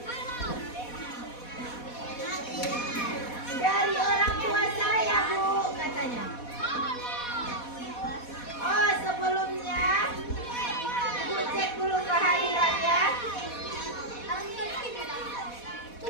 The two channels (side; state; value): right; late; 4.1 ms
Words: Dari orang tua saya, Bu, katanya. Oh, sebelumnya Ibu cek dulu kehadirannya.